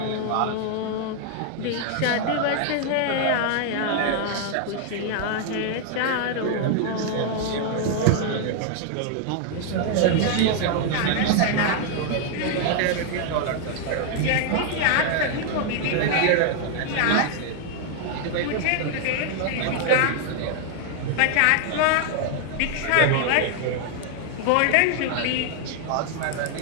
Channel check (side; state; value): both; different; correlation 0.00